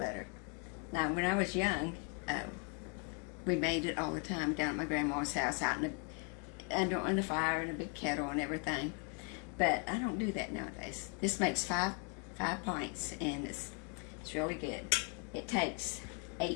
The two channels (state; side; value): quieter; right; 38.5 dB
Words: Now, when I was young, we made it all the time down at my grandma's house, out in under the fire in a big kettle and everything. But I don't do that nowadays. This makes five pints, and it's really good. It takes